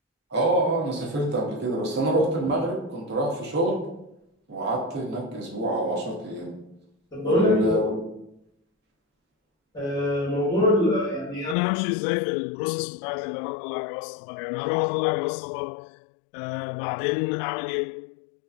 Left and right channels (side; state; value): right; drops out; at 11.6 s